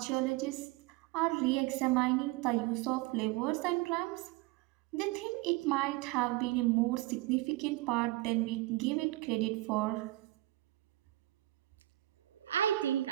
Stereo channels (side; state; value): left; quieter; 18.2 dB